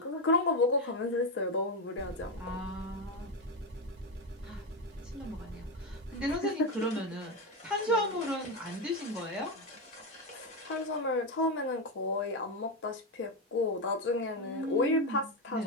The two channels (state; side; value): normal; both; correlation 0.11